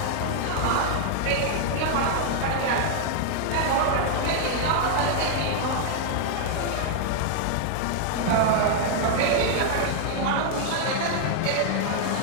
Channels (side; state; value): both; different; correlation 0.00